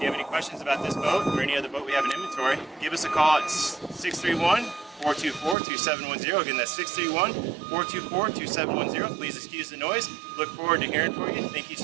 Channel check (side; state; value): left; drops out; at 5.6 s